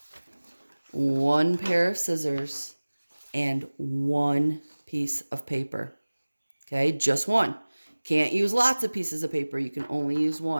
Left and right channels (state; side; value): inverted; both; correlation -1.00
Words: one pair of scissors, and one piece of paper. Okay, just one. Can't use lots of pieces of paper. You can only use